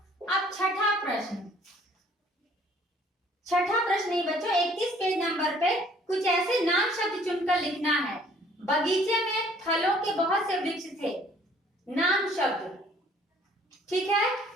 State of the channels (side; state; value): both; normal; correlation 0.58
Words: अब छठा प्रश्न। छठा प्रश्न नहीं बच्चों, 31 पेज नंबर पे कुछ ऐसे नाम शब्द चुनकर लिखना है। बगीचे में फलों के बहुत से वृक्ष थे। नाम शब्द। ठीक है,